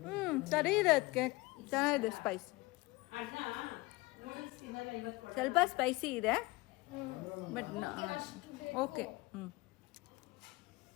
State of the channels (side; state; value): right; quieter; 22.2 dB